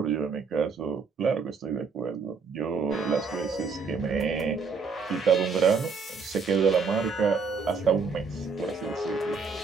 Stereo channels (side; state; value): left; quieter; 5.0 dB